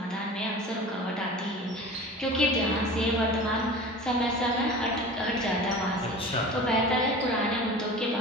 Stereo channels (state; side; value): normal; both; correlation 0.37